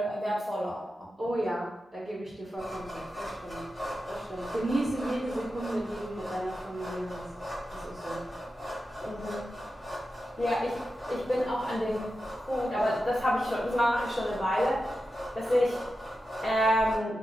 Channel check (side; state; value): both; normal; correlation 0.90